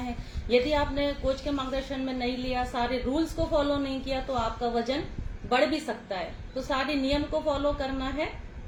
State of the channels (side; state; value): both; identical; correlation 1.00